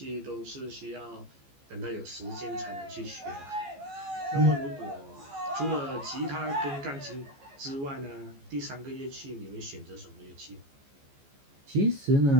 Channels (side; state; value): left; late; 14 ms